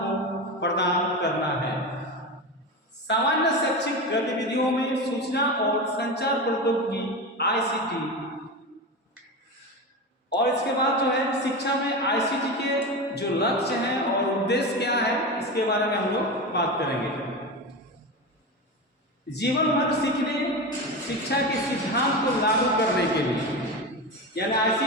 प्रदान करना है। सामान्य शैक्षिक गतिविधियों में सूचना और संचार प्रौद्योगिकी आईसीटी और इसके बाद जो है शिक्षा में आईसीटी के जो लक्ष्य हैं और उद्देश्य क्या है इसके बारे में हम लोग बात करेंगे। जीवन भर सीखने शिक्षा के सिद्धांत को लागू करने के लिए, यानी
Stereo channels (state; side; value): normal; both; correlation 0.22